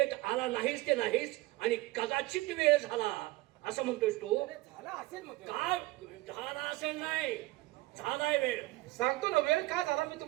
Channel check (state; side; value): quieter; left; 19.8 dB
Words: आला नाहीस ते नाहीस आणि कदाचित वेळ झाला असं म्हणतोस तू? झाला असेल मग काय झाला असेल? नाही, झालाय वेळ. सांगतो ना वेळ का झाला मी